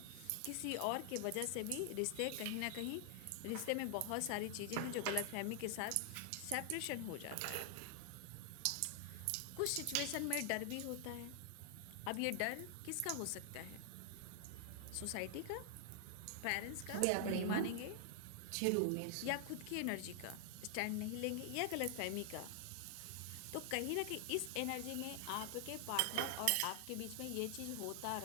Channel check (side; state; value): both; different; correlation 0.00